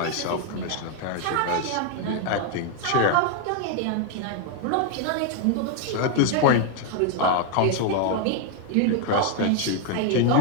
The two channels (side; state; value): both; different; correlation 0.01